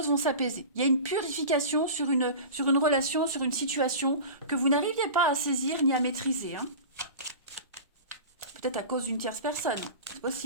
vont s'apaiser. Il y a une purification sur une relation, sur une situation que vous n'arriviez pas à saisir ni à maîtriser. Hein. Peut-être à cause d'une tierce personne. C'est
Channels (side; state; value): both; inverted; correlation -0.34